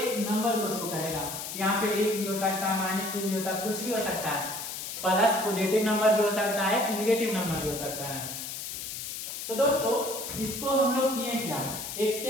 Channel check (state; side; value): noise; left; hiss, 7 dB below the sound